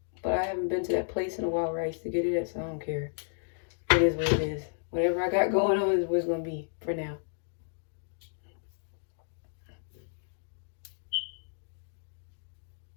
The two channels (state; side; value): silent; right; digital silence